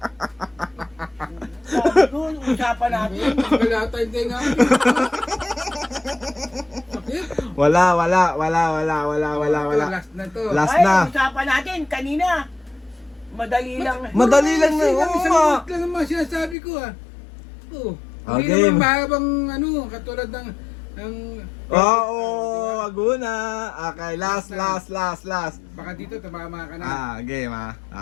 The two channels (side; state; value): right; drops out; at 16.6 s